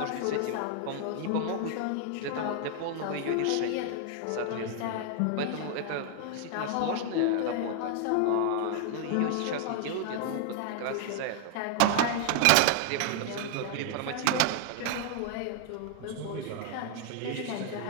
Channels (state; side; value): different; both; correlation 0.00